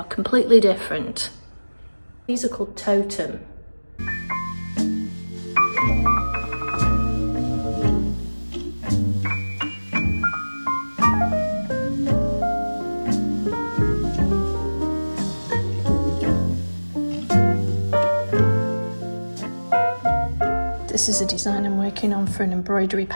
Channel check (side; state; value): both; inverted; correlation -1.00